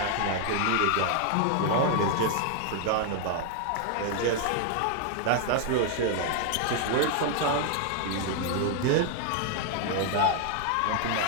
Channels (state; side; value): different; both; correlation 0.00